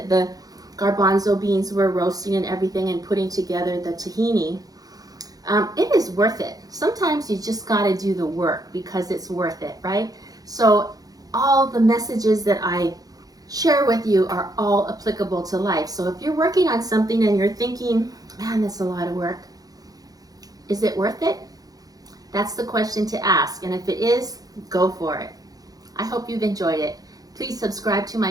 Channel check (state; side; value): late; left; 0.18 ms